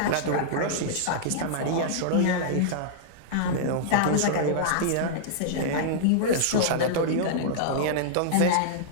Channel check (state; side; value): different; both; correlation -0.02